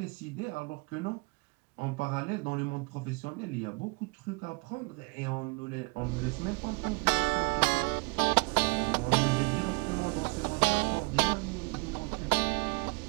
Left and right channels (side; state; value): left; quieter; 31.2 dB